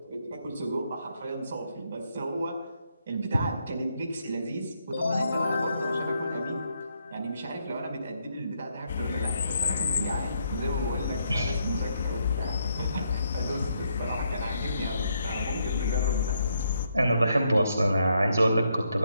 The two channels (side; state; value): both; inverted; correlation -0.76